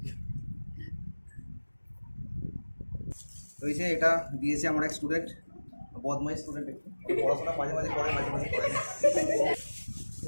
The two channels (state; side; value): inverted; both; correlation -1.00